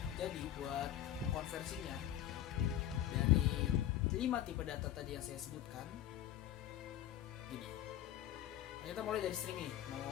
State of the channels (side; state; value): right; quieter; 12.1 dB